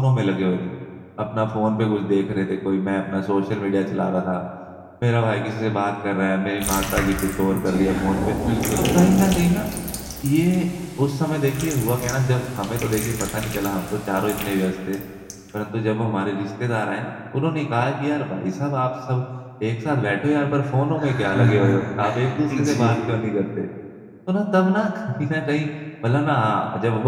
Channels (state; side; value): identical; both; correlation 1.00